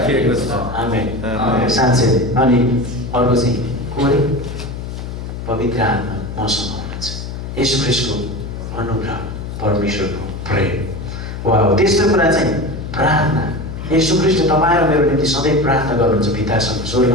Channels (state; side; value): noise; left; hum, 8 dB below the sound